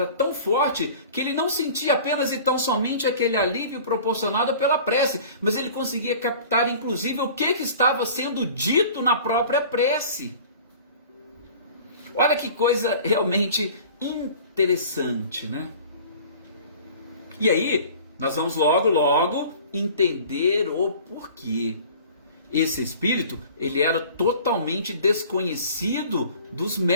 tão forte que ele não sentia apenas e tão somente aquele alívio proporcionado pela prece, mas ele conseguia captar inclusive o que estava sendo dito na própria prece. Olha que coisa realmente interessante, né? E aí, nós vamos logo entender o porquê. Esse espírito, ele era totalmente desconhecido dos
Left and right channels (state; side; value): inverted; both; correlation -0.44